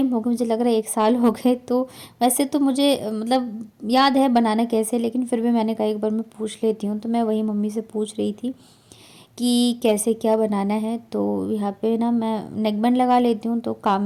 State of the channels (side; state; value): both; identical; correlation 1.00